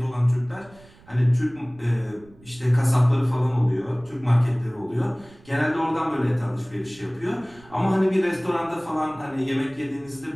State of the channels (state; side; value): noise; right; rumble, 25 dB below the sound